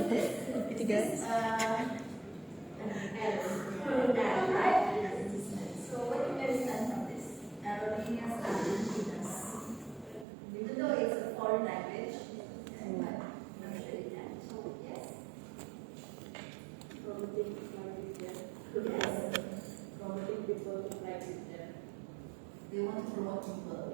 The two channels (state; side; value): drops out; left; at 10.2 s